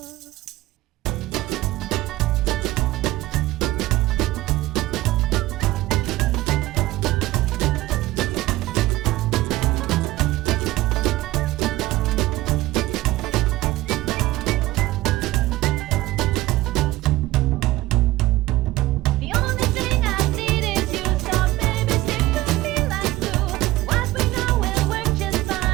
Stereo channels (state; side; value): quieter; left; 17.7 dB